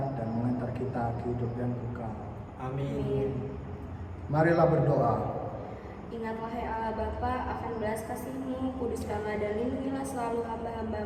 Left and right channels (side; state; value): both; identical; correlation 1.00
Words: dan mengantar kita ke hidup yang kekal. Amin. Marilah berdoa. Ingat wahai Allah Bapa akan belas kasih-Mu, kuduskanlah dan lindungilah selalu